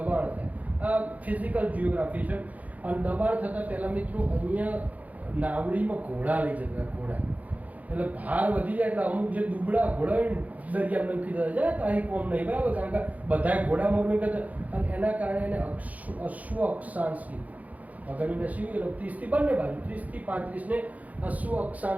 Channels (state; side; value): late; left; 0.075 ms